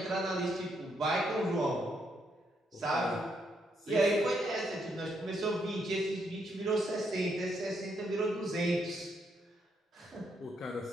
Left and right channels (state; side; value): normal; both; correlation 0.76